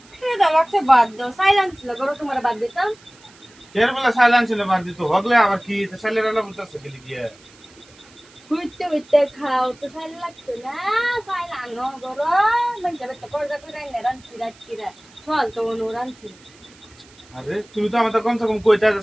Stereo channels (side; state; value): right; noise; hiss, 26 dB below the sound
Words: খিদা লাগছে বাদ দাও সাইলেন্স ছিল করো তোমার বাদ দিতাম এর বেলা সাইলেন্স ছিল বাদ দিত হগলে আবার কি তো সাইলেন্স বলতেছে গেলি গিয়ে হইতে হইতে খাও তো সাইল লাগতো না সাইল আনো করো মানে যাবে তো করজা করে না রানছি রাতকিরা চল তো অনু রানছি আরে তুমি তো আমাদের কমসে কম কইতা যে